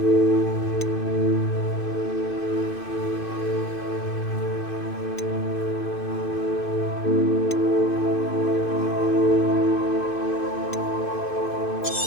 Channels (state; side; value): late; right; 2.6 ms